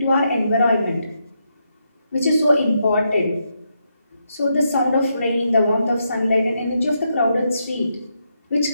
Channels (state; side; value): inverted; both; correlation -0.81